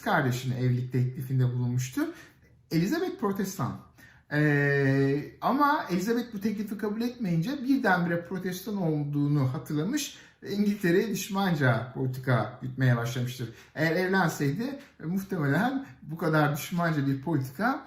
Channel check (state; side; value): identical; both; correlation 1.00